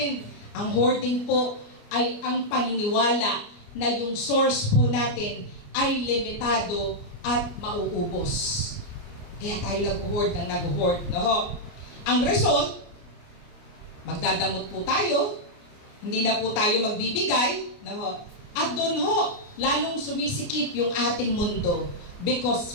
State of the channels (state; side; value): late; right; 28 ms